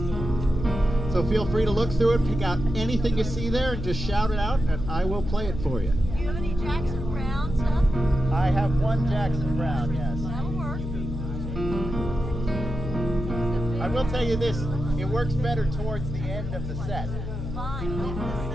So feel free to look through it, pick out anything you see there, and just shout it out, and I will play it for you. Do you have any Jackson Brown stuff? I have one Jackson Brown, yes. That'll work. I will tell you this, it works better towards the end of the set. Fine.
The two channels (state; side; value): noise; left; hum, 6 dB below the sound